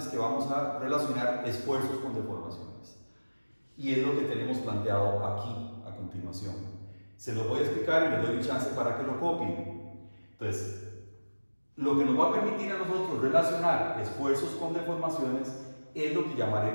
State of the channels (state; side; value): inverted; both; correlation -1.00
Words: que vamos a relacionar esfuerzos con deformaciones. Y es lo que tenemos planteado aquí a continuación. Se lo voy a explicar y les doy un chance para que lo copien. Entonces, lo que nos va a permitir a nosotros relacionar esfuerzos con deformaciones es lo que